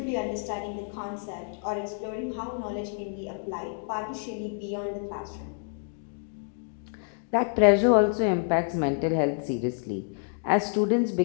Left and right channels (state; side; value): silent; right; 58 dB below the other